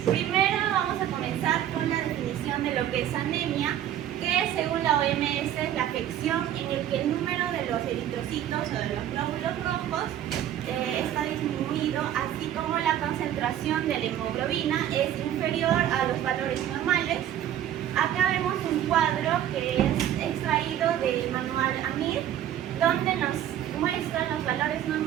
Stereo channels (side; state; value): left; quieter; 11.2 dB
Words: Primero vamos a comenzar con la definición de lo que es anemia, que según la OMS es la afección en el que el número de los eritrocitos o de los glóbulos rojos está disminuido, así como la concentración de la hemoglobina es inferior a los valores normales. Acá vemos un cuadro que es extraído del manual AMIR, donde nos muestran los valores